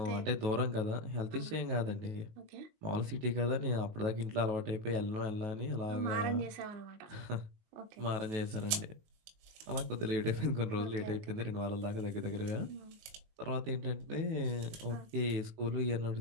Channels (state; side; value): late; left; 19 ms